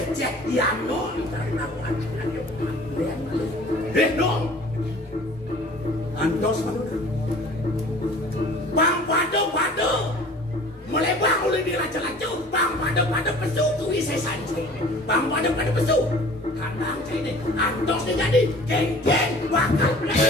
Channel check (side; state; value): both; normal; correlation 0.47